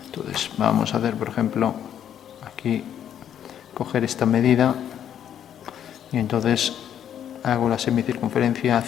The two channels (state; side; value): quieter; right; 9.7 dB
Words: Entonces vamos a hacer, por ejemplo, aquí coger esta medida y entonces hago la semicircunferencia